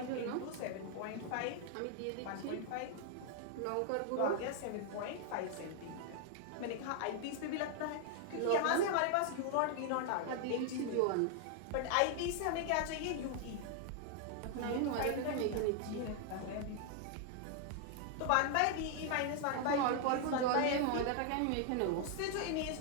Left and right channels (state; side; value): different; both; correlation 0.00